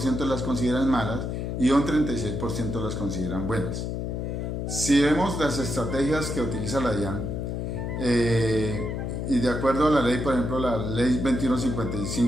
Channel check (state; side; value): noise; left; hum, 3 dB below the sound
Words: las consideran malas y un 36% las consideran buenas. Si vemos las estrategias que utiliza la DIAN, y de acuerdo a la ley, por ejemplo, la ley